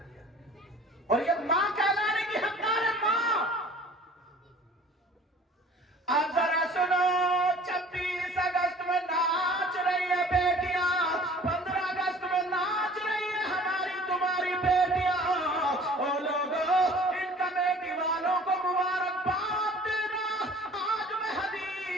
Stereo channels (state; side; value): normal; both; correlation 0.49